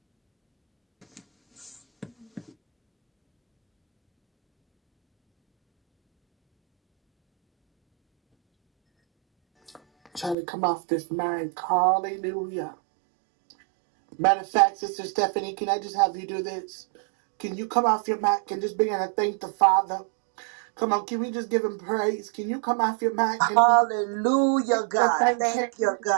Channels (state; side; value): drops out; left; at 10.4 s